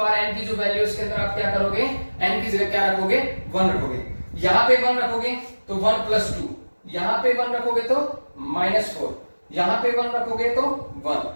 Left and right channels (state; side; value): inverted; both; correlation -1.00